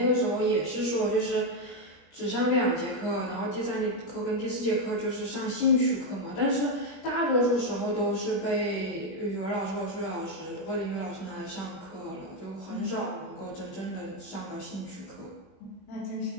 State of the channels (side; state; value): right; late; 21 ms